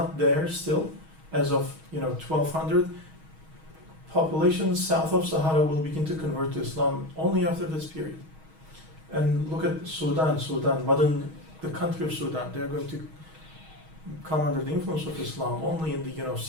there still as of 1200. Populations south of Sahara will begin to convert to Islam only after this period. And look at Sudan, the country of Sudan. They are going to come under the influence of Islam only in the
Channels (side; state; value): left; late; 6.3 ms